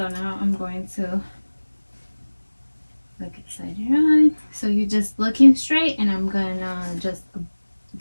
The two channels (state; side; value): inverted; both; correlation -1.00